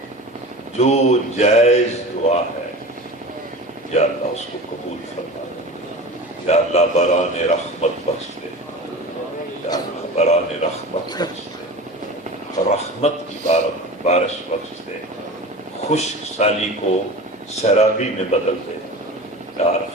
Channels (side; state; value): both; normal; correlation 0.33